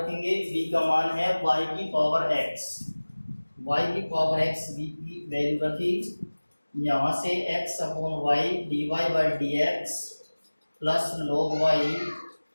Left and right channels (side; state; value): both; inverted; correlation -1.00